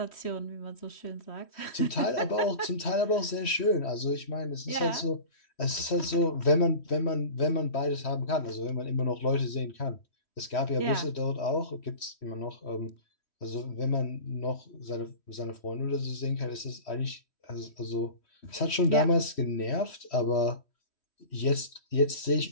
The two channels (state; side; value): late; right; 3.1 ms